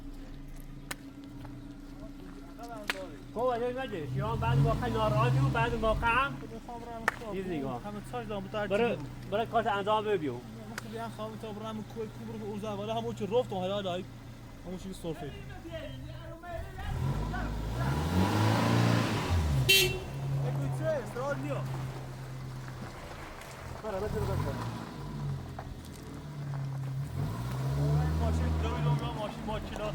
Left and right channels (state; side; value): identical; both; correlation 1.00